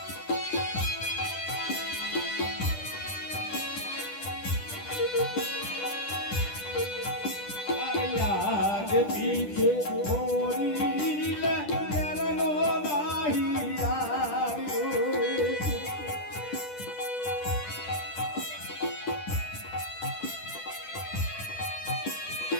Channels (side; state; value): right; late; 10 ms